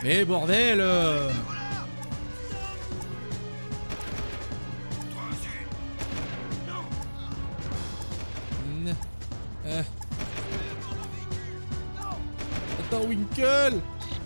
Mais bordel Attends, Winkle!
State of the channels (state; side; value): inverted; both; correlation -1.00